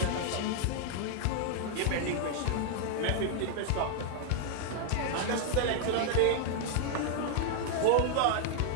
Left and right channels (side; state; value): both; different; correlation 0.00